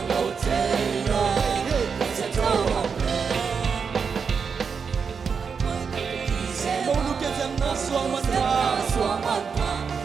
Taylor Central Mau lukin siang na suaman ka. Suaman pa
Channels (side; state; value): left; quieter; 5.9 dB